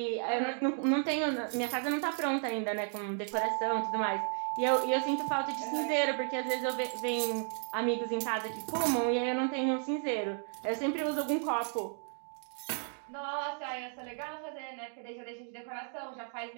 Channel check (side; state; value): left; silent; 55 dB below the other